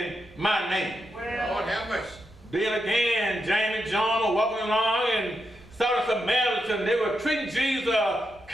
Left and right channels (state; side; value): normal; both; correlation 0.85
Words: my name. Lord have mercy. Then again, James and John were walking along and saw the Samaritans. They were treating Jesus